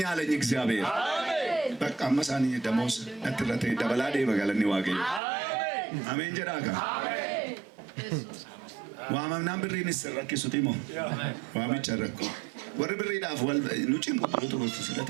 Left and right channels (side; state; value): left; drops out; at 5.2 s